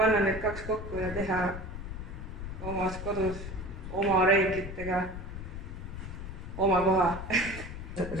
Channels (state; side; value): noise; left; rumble, 8 dB below the sound